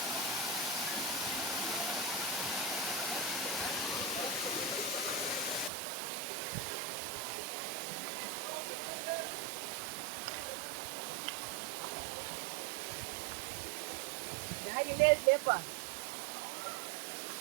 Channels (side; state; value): left; drops out; at 5.7 s